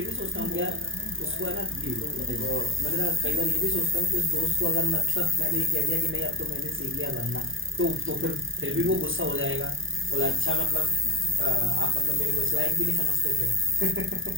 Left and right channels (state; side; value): late; left; 0.58 ms